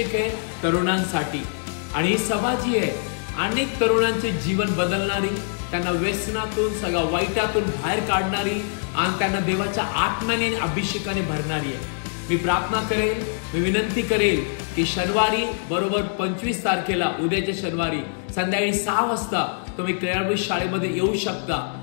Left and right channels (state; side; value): silent; right; digital silence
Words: आहे तरुणांसाठी. आणि ही सभा जी आहे अनेक तरुणांचे जीवन बदलणारी, त्यांना व्यसनातून सगळ्या वाईटातून बाहेर काढणारी आणि त्यांना देवाच्या आत्म्याने आणि अभिषेकाने भरणारी आहे. मी प्रार्थना करेल, मी विनंती करेल की शनिवारी बरोबर 25 तारखेला उद्याच्या शनिवारी संध्याकाळी 6 वाजता तुम्ही क्रियारभूत शाळेमध्ये येऊ शकता.